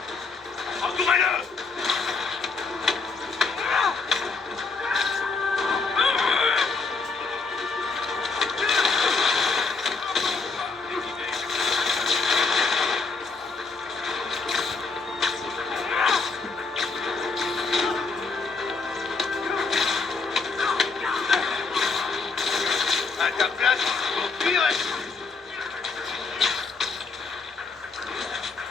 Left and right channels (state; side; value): quieter; right; 4.2 dB